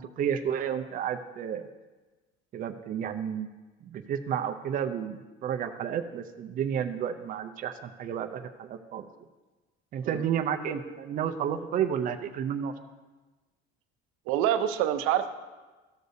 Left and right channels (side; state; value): left; quieter; 8.8 dB